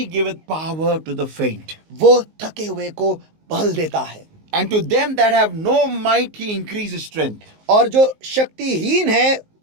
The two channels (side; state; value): left; late; 19 ms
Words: giveth power to the faint. वो थके हुए को बल देता है। And to them that have no might, He increases strength. और जो